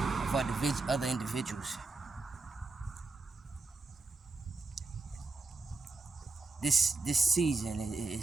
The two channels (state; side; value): quieter; left; 3.7 dB